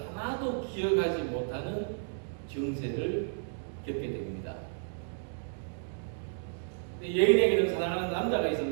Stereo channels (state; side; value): silent; left; digital silence